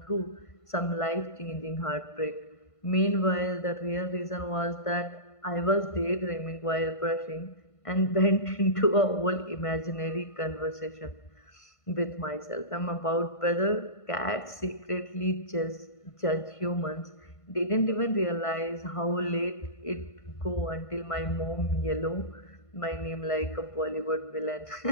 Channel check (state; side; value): late; right; 1.5 ms